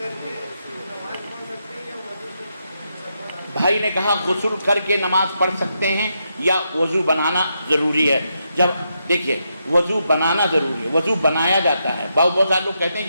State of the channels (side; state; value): both; inverted; correlation -0.82